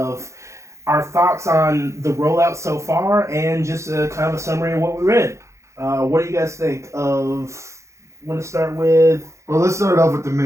our thoughts on the rollout so far and just a kind of a summary of what we read. What do you guys think of? Want to start with? Well, let's start off with the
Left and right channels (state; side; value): late; left; 0.14 ms